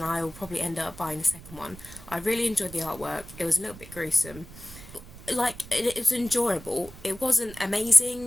I will probably end up buying the second one. I really enjoyed the artwork. It was a little bit gruesome. Like, it was enjoyable. It wasn't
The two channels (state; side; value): noise; right; rumble, 17 dB below the sound